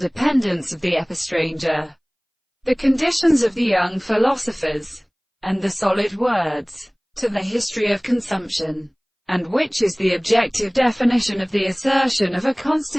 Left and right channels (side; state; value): both; identical; correlation 1.00